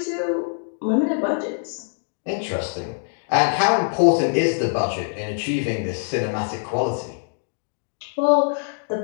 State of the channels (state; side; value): silent; right; digital silence